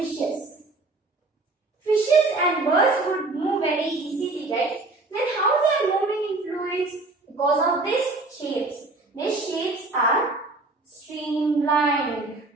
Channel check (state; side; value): quieter; left; 3.2 dB